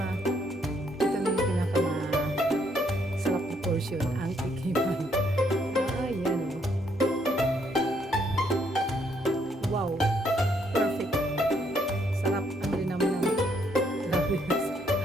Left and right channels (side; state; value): both; normal; correlation 0.71